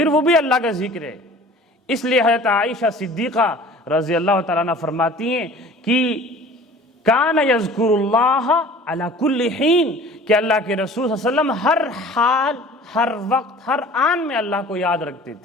وہ بھی اللہ کا ذکر ہے۔ اس لیے حضرت عائشہ صدیقہ رضی اللہ تعالیٰ عنہ فرماتی ہیں کہ کان یذکر اللہ علی کل حین، کہ اللہ کے رسول صلی اللہ علیہ وسلم ہر حال، ہر وقت، ہر آن میں اللہ کو یاد رکھتے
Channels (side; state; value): both; normal; correlation 0.45